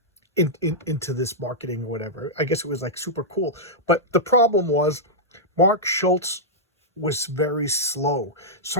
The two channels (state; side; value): normal; both; correlation -0.09